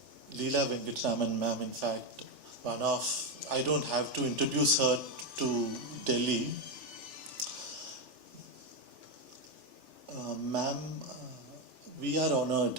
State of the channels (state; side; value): late; left; 3.4 ms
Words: Leela Venkatraman ma'am. In fact, I don't have to introduce her to Delhi. Ma'am, we are